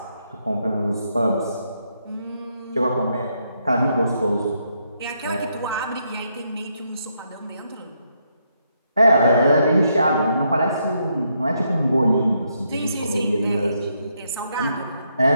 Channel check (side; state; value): both; inverted; correlation -0.77